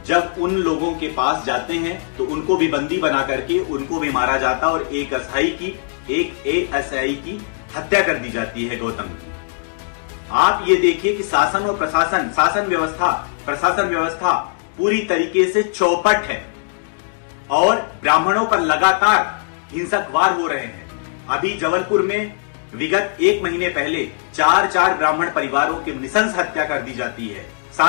जब उन लोगों के पास जाते हैं तो उनको भी बंदी बना करके उनको भी मारा जाता और एक एएसआई की हत्या कर दी जाती है गौतम की। आप ये देखिए कि शासन और प्रशासन व्यवस्था पूरी तरीके से चौपट है और ब्राह्मणों पर लगातार हिंसक वार हो रहे हैं। अभी जबलपुर में विगत एक महीने पहले चार ब्राह्मण परिवारों की नृशंस हत्या कर दी जाती है।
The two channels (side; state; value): right; silent; digital silence